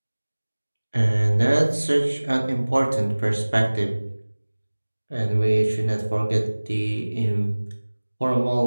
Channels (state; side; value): inverted; both; correlation -1.00